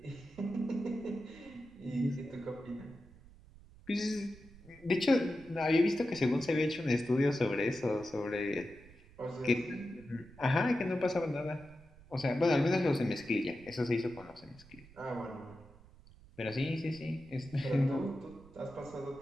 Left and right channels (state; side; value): noise; right; rumble, 22 dB below the sound